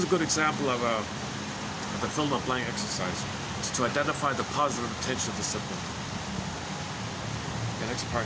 a good example of the fill in the blank exercise. It's to identify the positive intention of the symptom. Okay, next part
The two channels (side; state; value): both; identical; correlation 1.00